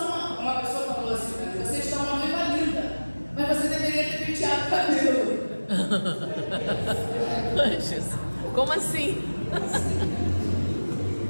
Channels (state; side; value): inverted; both; correlation -1.00